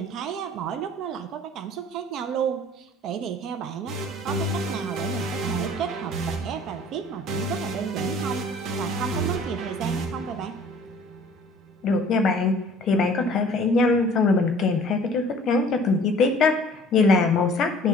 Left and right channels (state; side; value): normal; both; correlation 0.51